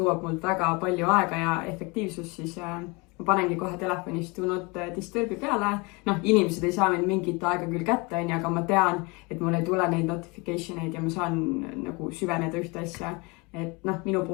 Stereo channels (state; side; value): quieter; right; 27.8 dB